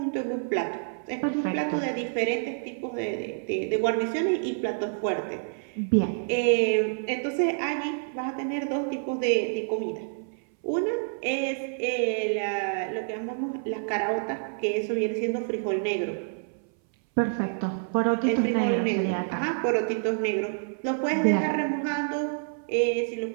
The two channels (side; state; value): left; silent; 60 dB below the other